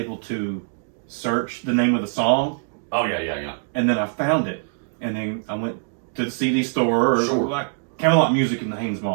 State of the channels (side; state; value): left; silent; digital silence